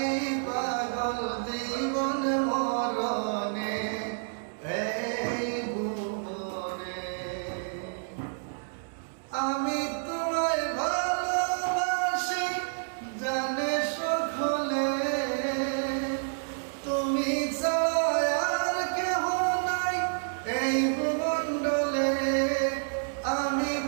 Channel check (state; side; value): silent; left; digital silence